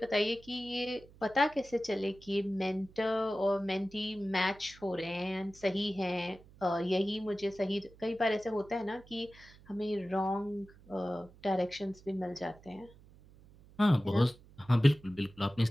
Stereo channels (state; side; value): noise; right; hum, 24 dB below the sound